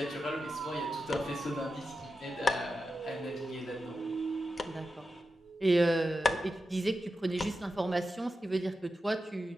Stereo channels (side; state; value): both; normal; correlation 0.90